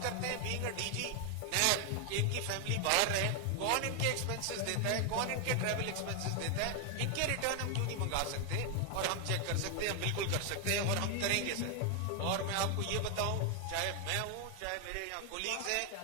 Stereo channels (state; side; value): different; both; correlation 0.01